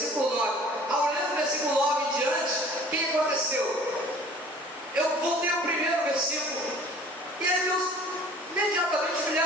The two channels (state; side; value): normal; both; correlation 0.49